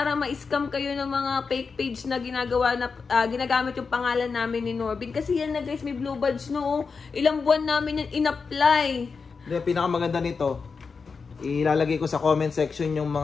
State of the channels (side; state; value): right; quieter; 5.1 dB